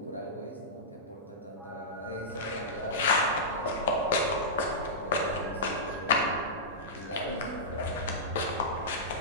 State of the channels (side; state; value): both; normal; correlation -0.14